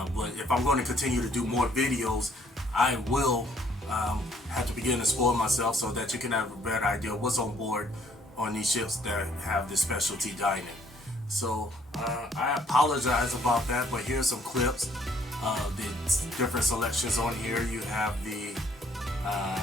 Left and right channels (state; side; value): normal; both; correlation 0.64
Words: But if I'm going to continue to do more videos, I will have to begin to spoil myself so that you can have a better idea of what's on board on these ships that have this specialty dining. So I apologize about that, but here's some clips of the different selections on here. You have the